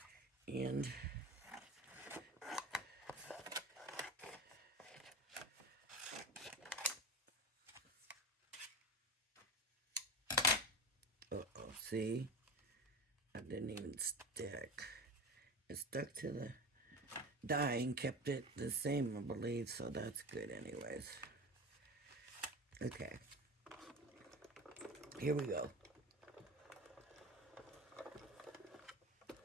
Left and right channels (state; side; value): normal; both; correlation 0.27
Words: And see? I didn't even stick. It stuck to the die and kept it the same, I believe, so that's good anyways. Okay. Here we go.